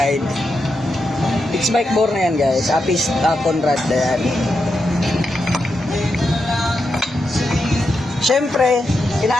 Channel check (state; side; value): normal; both; correlation 0.86